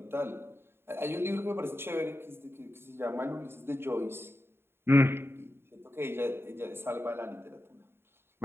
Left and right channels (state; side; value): late; left; 0.11 ms